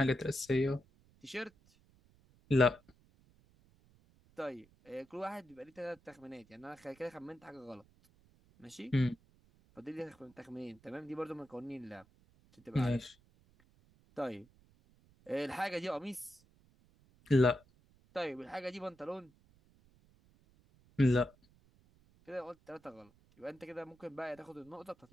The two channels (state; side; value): noise; right; rumble, 29 dB below the sound